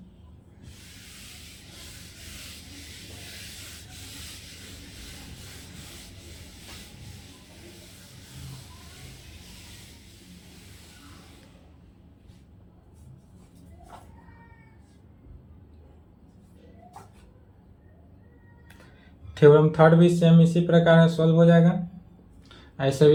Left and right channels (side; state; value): both; identical; correlation 1.00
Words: थ्योरम थर्ड भी सेम इसी प्रकार से सॉल्व हो जाएगा, ऐसे